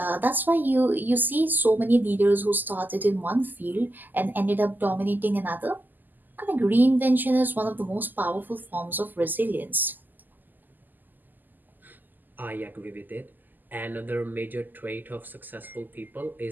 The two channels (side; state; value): left; late; 0.087 ms